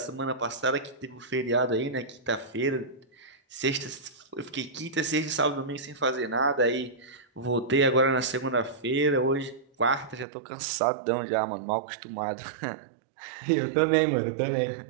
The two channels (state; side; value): drops out; left; at 10.2 s